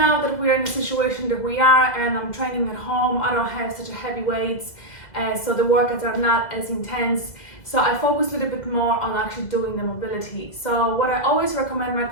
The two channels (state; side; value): late; right; 2.0 ms